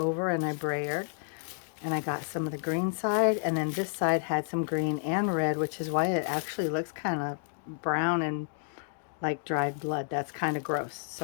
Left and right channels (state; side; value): silent; right; digital silence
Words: and I brayered. And I got some of the green side, and then this side had some green and red, which is why it actually looks kind of brown and like dried blood. That's kind of gross.